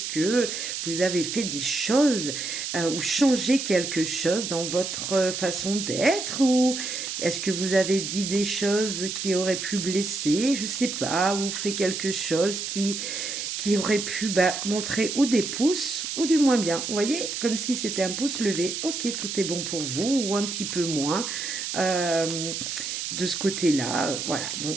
que vous avez fait des choses ou changé quelque chose dans votre façon d'être, ou est-ce que vous avez dit des choses qui auraient pu blesser, je sais pas, ou fait quelque chose qui aurait pu montrer ou des pouces ou du moins bien. Vous voyez, comme si c'était un pouce levé. Ok, tout est bon pour vous, ou un petit peu moins. Euh, de ce côté-là, voilà. Donc,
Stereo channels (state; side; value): noise; right; hiss, 4 dB below the sound